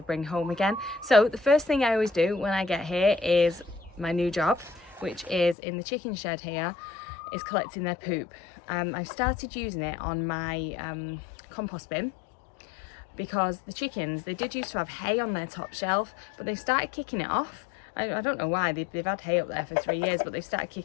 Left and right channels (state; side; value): drops out; right; at 5.6 s